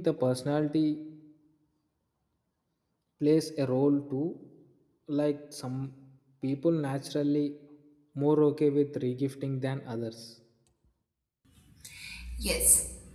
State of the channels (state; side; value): identical; both; correlation 1.00